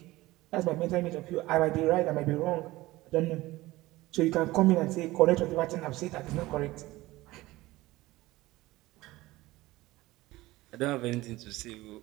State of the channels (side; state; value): left; quieter; 18.6 dB